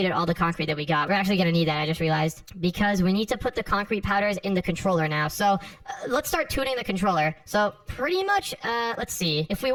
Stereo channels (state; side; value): identical; both; correlation 1.00